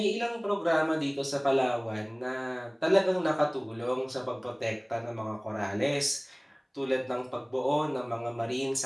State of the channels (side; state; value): both; identical; correlation 1.00